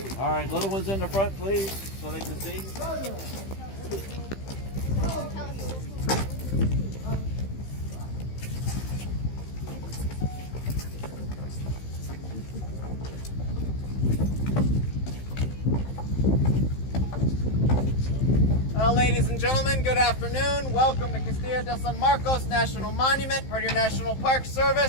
All right, little ones in the front, please, so they can see. Well, ladies and gentlemen, good afternoon. Welcome to Castillo de San Marcos National Monument, part of your National Park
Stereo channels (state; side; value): late; right; 15 ms